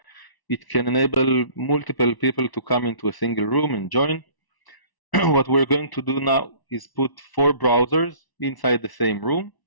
It can enable multiple people to come into a single room and join. What we're going to do now is put 4 browsers inside the same room.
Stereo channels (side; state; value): right; late; 1.0 ms